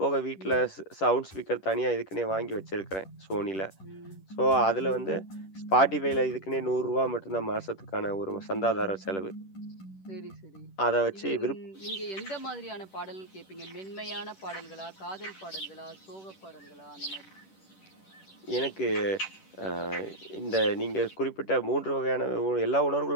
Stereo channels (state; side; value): late; right; 10 ms